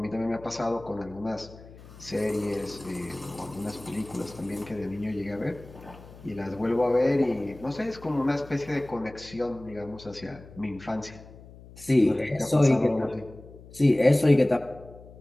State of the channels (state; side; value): noise; left; hum, 19 dB below the sound